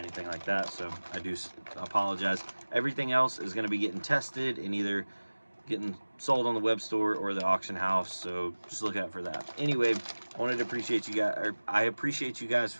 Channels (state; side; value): inverted; both; correlation -1.00